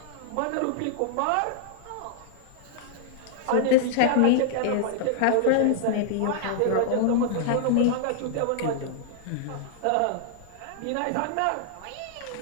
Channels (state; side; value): different; both; correlation -0.01